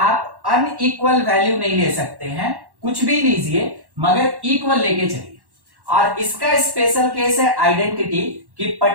अनइक्वल वैल्यू नहीं ले सकते हैं, कुछ भी लीजिए मगर इक्वल लेके चलिए। और इसका स्पेशल केस है आइडेंटिटी, कि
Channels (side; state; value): left; late; 1.1 ms